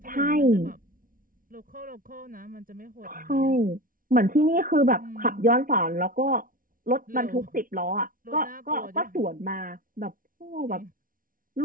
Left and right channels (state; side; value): late; left; 0.40 ms